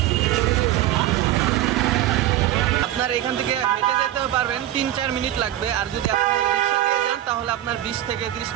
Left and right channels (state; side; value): quieter; left; 13.2 dB